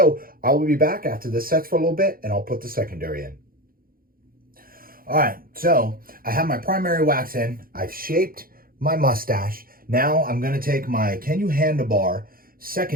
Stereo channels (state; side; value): late; left; 0.42 ms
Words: I will be back after this sets for a little bit, and I'll put the secondary in. All right, so I have my primary wax in. I've shaped my mustache. Now I'm going to take my Can You Handlebar